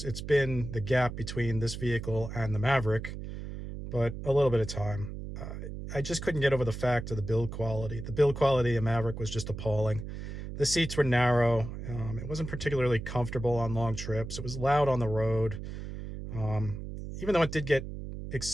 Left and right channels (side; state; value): right; noise; hum, 8 dB below the sound